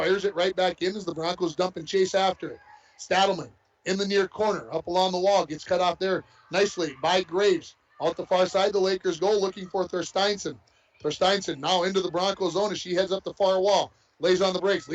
it right back in as the Broncos dump and chase after it. Stadelman in the near corner, up along the wall, gets cut off there nicely by Graves. Out the far side, the Lakers go looking for Thorsteinson. Thorsteinson now into the Broncos zone as she heads up the far wall. Lays on the brakes,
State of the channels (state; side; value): identical; both; correlation 1.00